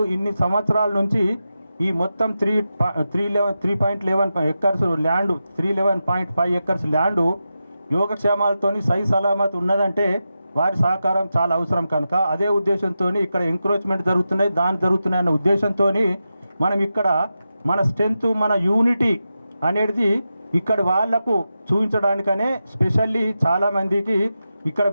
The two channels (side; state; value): both; inverted; correlation -0.90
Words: ఇన్ని సంవత్సరాల నుంచి ఈ మొత్తం 3.11 ఎకర్స్ ల్యాండ్ 311.5 ఎకర్స్ ల్యాండు యోగక్షేమాలతోని సై సలామత్ ఉన్నదంటే వారి సహకారం చాలా అవసరం కనుక అదే ఉద్దేశంతో ఇక్కడ ఎంక్రోచ్మెంట్ జరుగుతున్నాయి అన్న ఉద్దేశంతో మనం ఇక్కడ మన స్ట్రెంత్ మన యూనిటీ అనేది ఇక్కడ వాళ్లకు చూపించడానికనే స్పెషల్లీ చాలామందికి ఇక్కడ